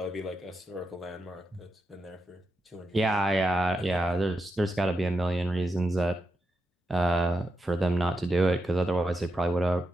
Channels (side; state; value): both; normal; correlation 0.86